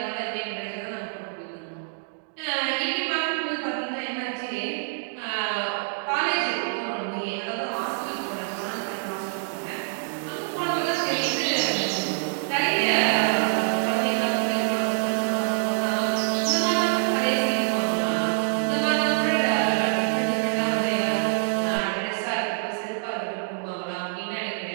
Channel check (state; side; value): silent; left; digital silence